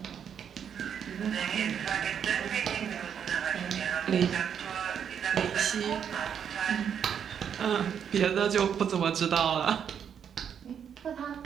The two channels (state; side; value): quieter; left; 8.1 dB